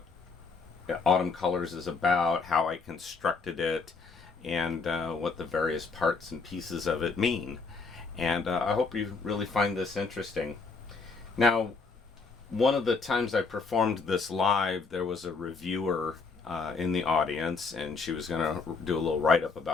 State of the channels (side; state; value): right; quieter; 4.5 dB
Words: Autumn Colors is about, how I constructed it, and what the various parts and pieces of it mean. And I hope you really find this interesting. Now, one of the times I performed this live, there was a reviewer in the audience, and she was going to do a little write-up